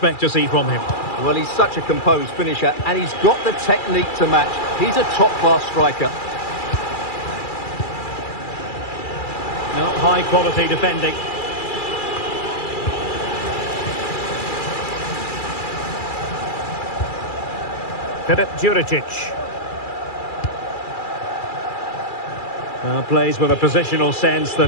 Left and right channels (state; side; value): late; right; 2.3 ms